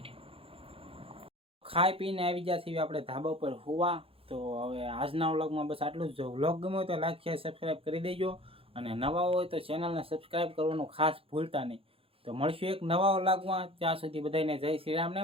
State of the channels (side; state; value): left; late; 0.27 ms